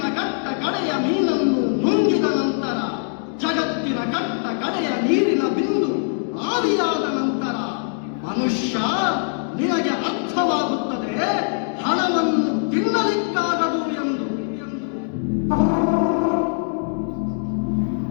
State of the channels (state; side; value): silent; right; 64 dB below the other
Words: ಕಟ್ಟ ಕಡೆಯ ಮೀನನ್ನು ನುಂಗಿದ ನಂತರ, ಜಗತ್ತಿನ ಕಟ್ಟ ಕಡೆಯ ನೀರಿನ ಬಿಂದು ಆದಿಯಾದ ನಂತರ ಮನುಷ್ಯ ನಿನಗೆ ಅರ್ಥವಾಗುತ್ತದೆ ಹಣವನ್ನು ತಿನ್ನಲಿಕ್ಕಾಗದು ಎಂದು.